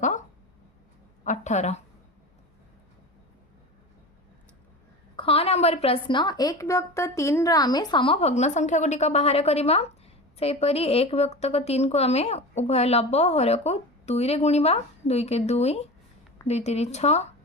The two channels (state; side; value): normal; both; correlation 0.30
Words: ख नंबर प्रश्न 1/3 आम समभग्न संख्या गुड़िक बाहर करवा। सेपरी 1/3 को आम उभय लब हर को 2 रे गुणिबा। 2 के 2, 2 3 6।